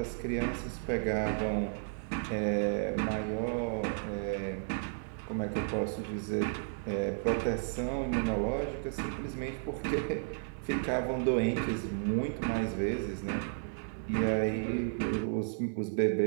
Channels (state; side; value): silent; left; 56 dB below the other